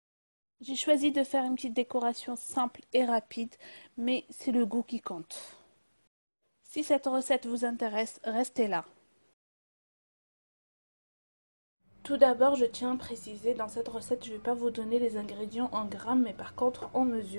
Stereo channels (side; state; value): both; inverted; correlation -1.00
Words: J'ai choisi de faire une petite décoration simple et rapide, mais c'est le goût qui compte. Si cette recette vous intéresse, restez là. Tout d'abord, je tiens à préciser, dans cette recette, je ne vais pas vous donner les ingrédients en grammes, mais par contre en